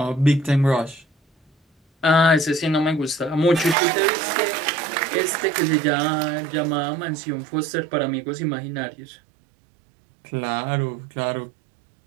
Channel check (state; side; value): drops out; left; at 3.8 s